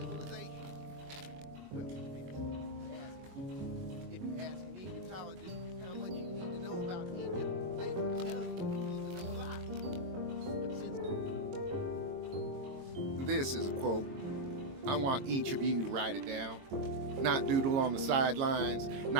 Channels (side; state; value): left; late; 22 ms